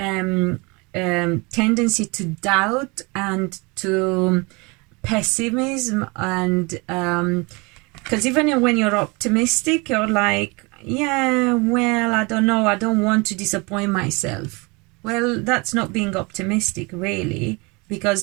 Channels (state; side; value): quieter; left; 27.6 dB